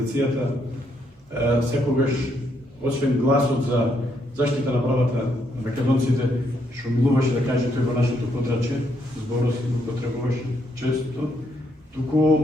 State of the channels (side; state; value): both; normal; correlation 0.75